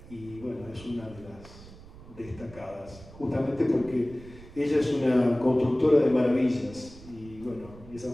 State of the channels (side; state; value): right; noise; rumble, 18 dB below the sound